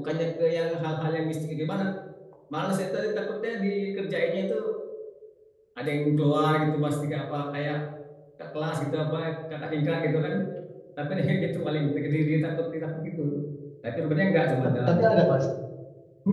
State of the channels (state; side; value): identical; both; correlation 1.00